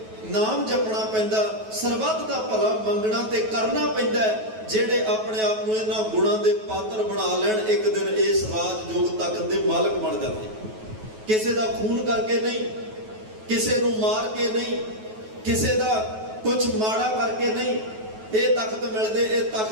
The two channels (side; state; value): left; late; 9.3 ms